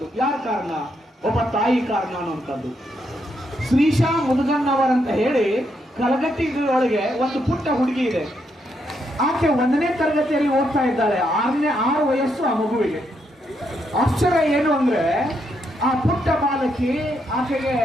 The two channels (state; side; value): normal; both; correlation 0.78